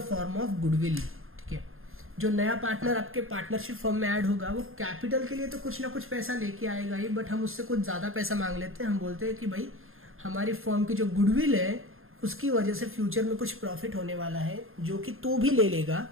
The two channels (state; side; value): late; left; 0.60 ms